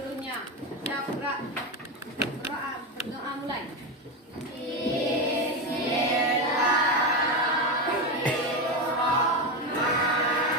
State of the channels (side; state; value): both; normal; correlation 0.14